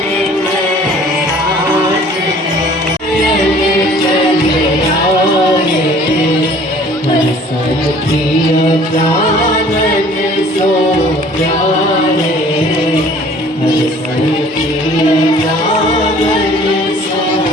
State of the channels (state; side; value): normal; both; correlation 0.52